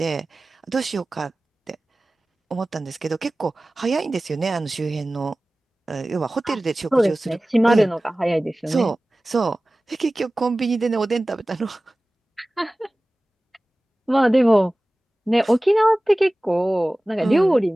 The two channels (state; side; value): normal; both; correlation 0.97